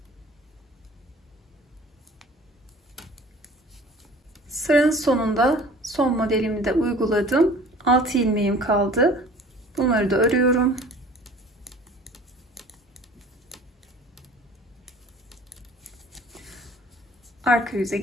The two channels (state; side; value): normal; both; correlation 0.47